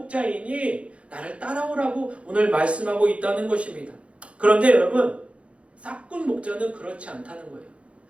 나를 따라오라고 오늘 말씀하고 있다는 것입니다. 그런데 여러분, 싹군 목자는 그렇지 않다는 거예요.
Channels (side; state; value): left; late; 0.062 ms